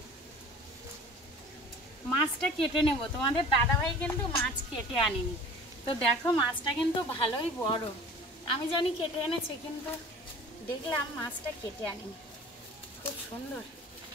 মাছটা কেটে নেব। তোমাদের দাদাভাই কিন্তু মাছ কেটে আনেনি। তো দেখো মাছটা কিন্তু ভালোই বড়। আমি জানি কেটে এনেছে, কিন্তু দেখলাম মাছটা কেটে আনেনি। খুব সুন্দর,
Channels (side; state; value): both; normal; correlation 0.43